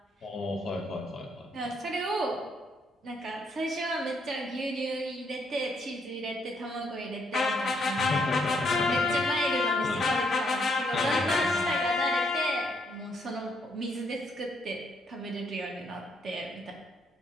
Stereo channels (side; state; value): both; normal; correlation 0.72